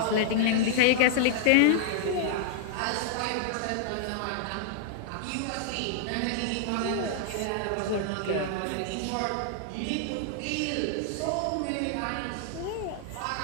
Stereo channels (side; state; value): both; different; correlation -0.01